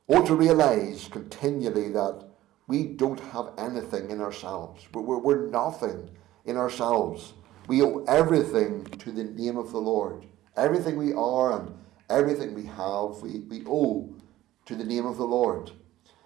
Or to realise continually that we don't have anything in ourselves. We're nothing in ourselves. We owe everything to the name of the Lord. Everything we are and everything we have, we owe to the name of the Lord.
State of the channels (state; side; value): quieter; left; 15.1 dB